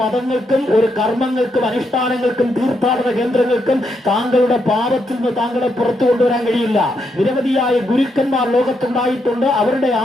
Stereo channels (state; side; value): normal; both; correlation 0.79